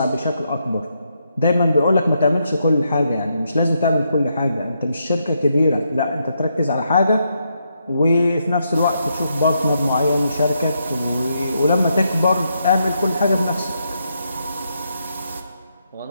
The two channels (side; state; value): both; inverted; correlation -0.80